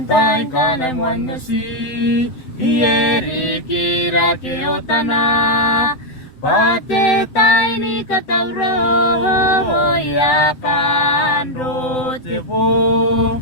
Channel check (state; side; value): late; right; 7.8 ms